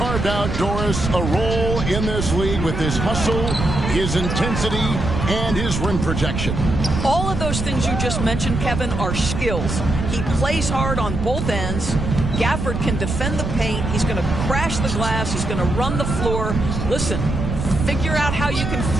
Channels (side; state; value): right; noise; rumble, 3 dB below the sound